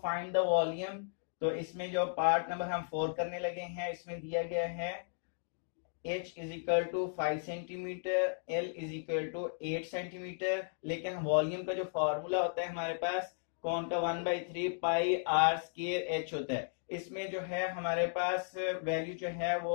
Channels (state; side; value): silent; right; digital silence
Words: the volume. तो इसमें जो पार्ट नंबर हम 4 करने लगे हैं, इसमें दिया गया है h is equal to 5 centimetre, l is equal to 8 centimetre. लेकिन वॉल्यूम का जो फॉर्मूला होता है हमारे पास कौन का 1/3 पाई आर स्क्वायर h होता है। इसमें जो है हमारे पास वैल्यू जो है